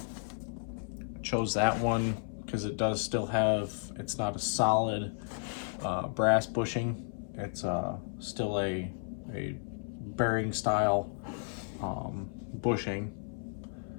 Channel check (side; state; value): right; silent; 56 dB below the other